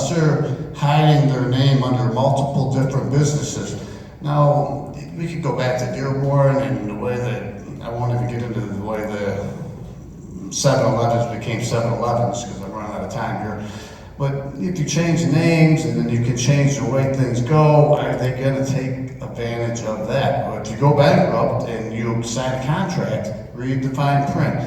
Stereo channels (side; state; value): both; identical; correlation 1.00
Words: they're hiding their name under multiple different businesses. Now, we could go back to Dearborn and the way that, I won't even get into the way the 7-Elevens became 7-Elevens, because I'm running out of time here. But if you change names and then you can change the way things go, are they going to take advantage of that? Or if you go bankrupt and you sign a contract, read the fine print.